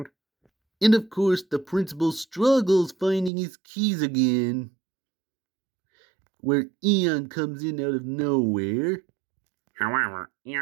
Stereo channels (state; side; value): drops out; left; at 3.3 s